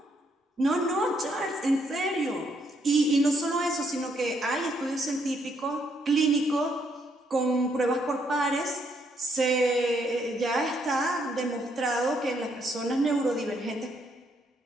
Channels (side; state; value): both; normal; correlation 0.73